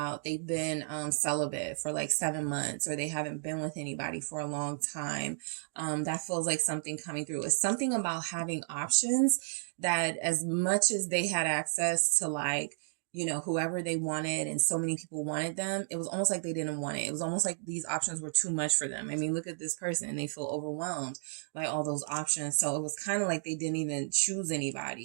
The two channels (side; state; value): left; silent; digital silence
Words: they've been celibate for like 7 months, or they haven't been with anybody for a long time. That feels like something coming through. It's something about having options, that as much as they had access to, like, you know, whoever they wanted, and so many people wanted them, it was almost like they didn't want it. It was almost like these options were too much for them. I mean, look at this person, and they feel overwhelmed by all those options. So it was kind of like they didn't even choose